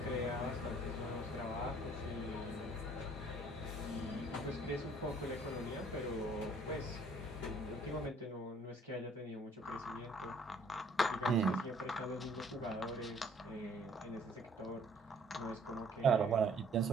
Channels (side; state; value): both; normal; correlation 0.59